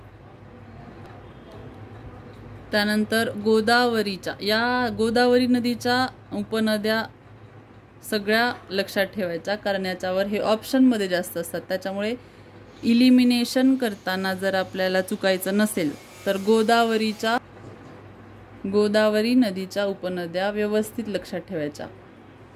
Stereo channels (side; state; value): both; identical; correlation 1.00